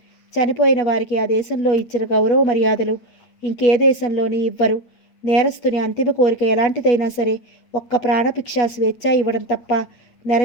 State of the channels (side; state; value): right; late; 8.6 ms